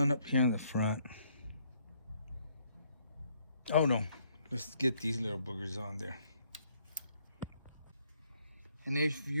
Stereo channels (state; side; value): inverted; both; correlation -0.69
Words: up here in the front. Oh no, let's get these little boogers on there. And if